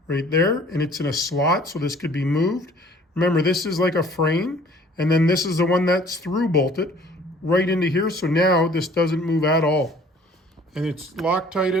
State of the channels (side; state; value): both; normal; correlation 0.53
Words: right there, and it's in a slot, so this could be moved. Remember, this is like a frame, and then this is the one that's through bolted right into here, so now this doesn't move at all. And it's